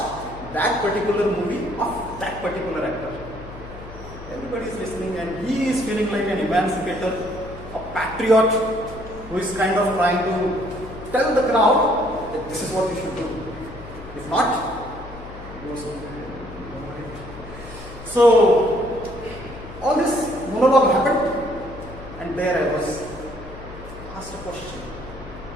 that particular movie of that particular actor. Everybody is listening, and he is feeling like an emancipator, a patriot who is kind of trying to tell the crowd that this is what you should do. If not, it goes on. So all this monologue happened, and there I was asked a question.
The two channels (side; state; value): left; noise; hum, 15 dB below the sound